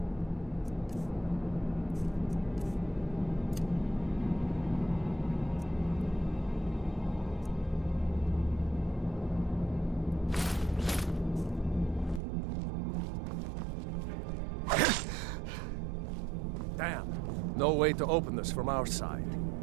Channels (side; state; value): left; drops out; at 12.2 s